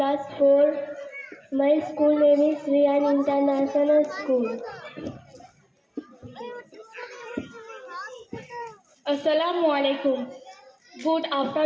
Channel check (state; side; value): identical; both; correlation 1.00